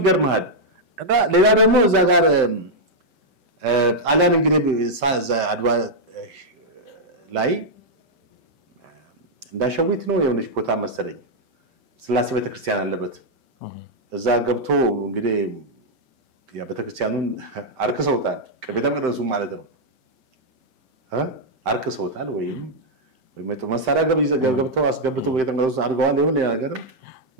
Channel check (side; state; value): left; late; 5.2 ms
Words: ይገርማል። እና ሌላ ደግሞ እዛ ጋር ጣሊያን እንግዲህ አድዋ ላይ እንዳሸዊት ነው የሆነች ቦታ መሰለኝ ስላሴ ቤተክርስቲያን አለበት እዛ ገብቶ እንግዲህ ያ ቤተክርስቲያኑን አርክሰውታል። ቤተ መቅደሱ ማለት ነው አርክሰውታል ወይም መሳሪያ ገብተው አስገብተው ቤተ መቅደሱ አድርገዋል። ይሁን ነገር